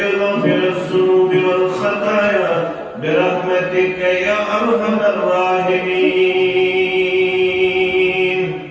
غافر الذنوب والخطايا برحمتك يا أرحم الراحمين.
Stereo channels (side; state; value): both; identical; correlation 1.00